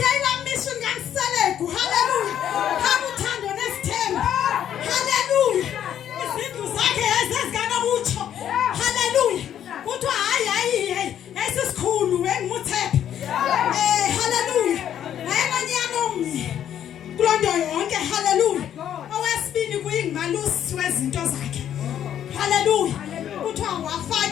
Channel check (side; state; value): right; quieter; 10.2 dB